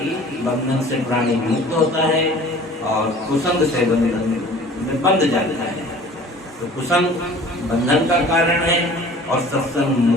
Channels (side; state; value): both; normal; correlation 0.46